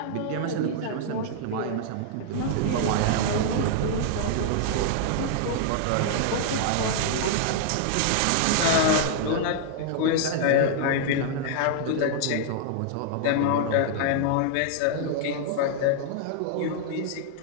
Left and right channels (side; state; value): both; different; correlation 0.00